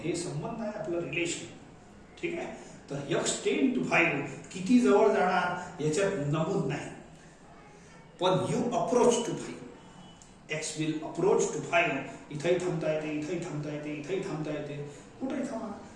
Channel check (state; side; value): identical; both; correlation 1.00